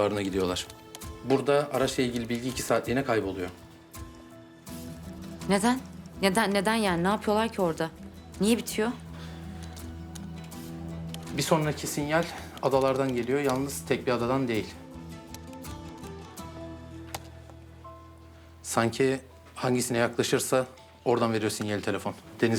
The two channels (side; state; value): both; identical; correlation 1.00